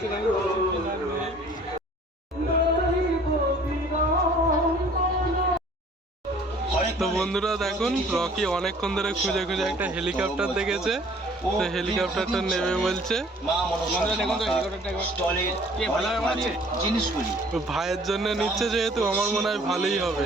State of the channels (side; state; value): both; normal; correlation 0.54